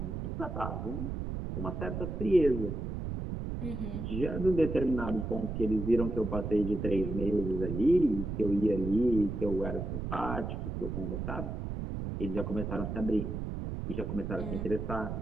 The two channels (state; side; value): noise; right; rumble, 4 dB below the sound